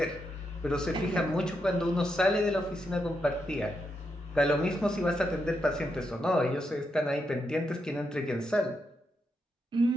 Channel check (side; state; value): both; normal; correlation 0.83